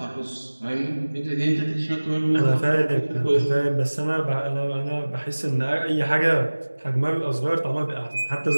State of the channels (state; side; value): inverted; both; correlation -1.00